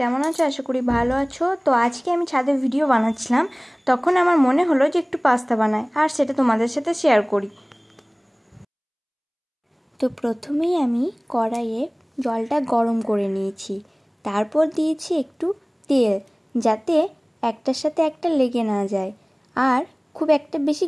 কেমন আছো? আশা করি ভালো আছো। তো আজকে আমি ছাদে ভিডিও বানাচ্ছিলাম, তখন আমার মনে হলো যে একটু পাস্তা বানাই আর সেটা তোমাদের সাথে শেয়ার করি। তো প্রথমেই আমি কড়াইয়ে জলটা গরম করে নিয়েছি, তারপর দিয়েছি একটু তেল, যাতে একটার সাথে একটা লেগে না যায় আর খুব একটা বেশি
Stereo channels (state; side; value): identical; both; correlation 1.00